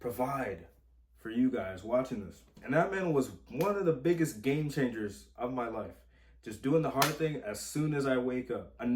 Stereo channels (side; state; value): both; identical; correlation 1.00